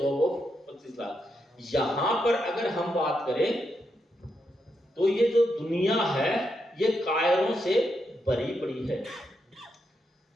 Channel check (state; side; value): normal; both; correlation 0.82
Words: of 25 lakh. यहां पर अगर हम बात करें तो ये जो दुनिया है ये कायरों से भरी पड़ी है।